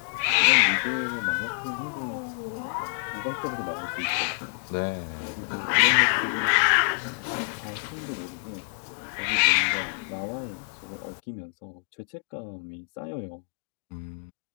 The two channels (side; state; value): right; silent; digital silence